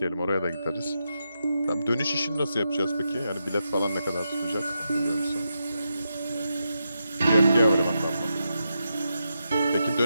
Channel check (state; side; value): inverted; both; correlation -0.85